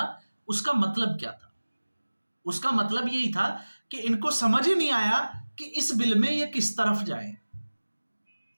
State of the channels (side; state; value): both; inverted; correlation -1.00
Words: उसका मतलब क्या था। उसका मतलब यही था कि इनको समझ ही नहीं आया कि इस बिल में ये किस तरफ जाए।